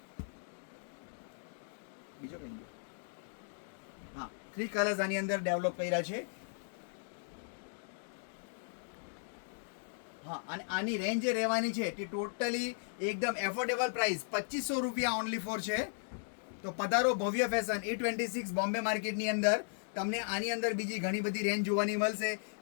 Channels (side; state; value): right; silent; digital silence